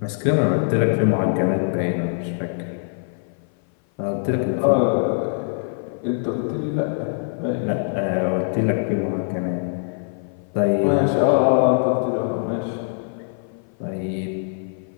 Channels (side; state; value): right; silent; 56 dB below the other